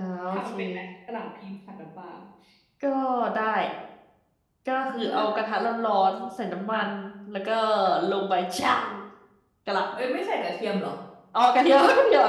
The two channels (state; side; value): identical; both; correlation 1.00